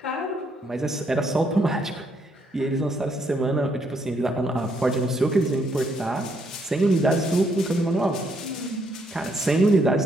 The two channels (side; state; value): both; normal; correlation 0.73